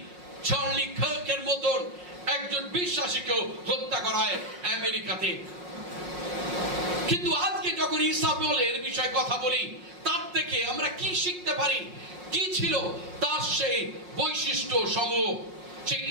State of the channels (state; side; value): late; left; 5.5 ms